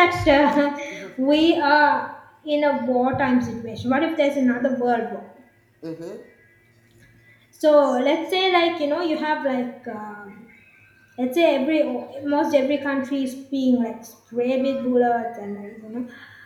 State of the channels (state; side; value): identical; both; correlation 1.00